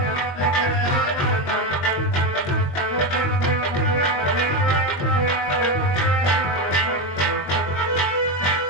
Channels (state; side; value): late; right; 21 ms